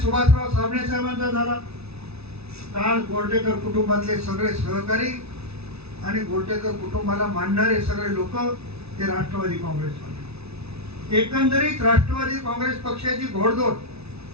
साबणे साहेबांचा झाला, काल गोरटेकर कुटुंबातले सगळे सहकारी आणि गोरटेकर कुटुंबाला मानणारे सगळे लोक हे राष्ट्रवादी काँग्रेसमध्ये। एकंदरीत राष्ट्रवादी काँग्रेस पक्षाची घोडदौड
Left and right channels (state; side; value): late; left; 0.79 ms